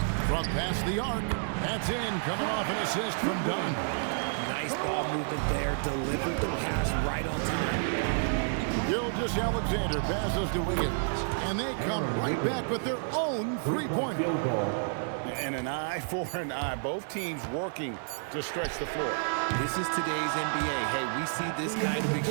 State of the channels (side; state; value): left; silent; digital silence